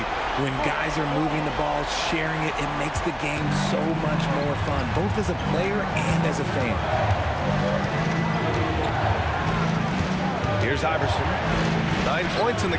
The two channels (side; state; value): both; identical; correlation 1.00